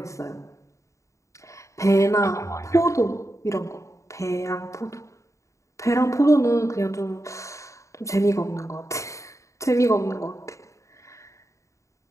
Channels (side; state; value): right; late; 0.15 ms